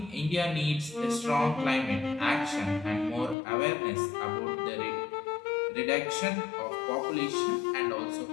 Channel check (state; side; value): drops out; right; at 3.4 s